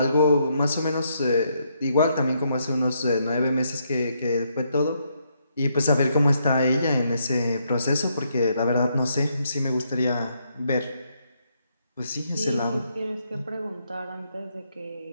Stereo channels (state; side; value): inverted; both; correlation -0.76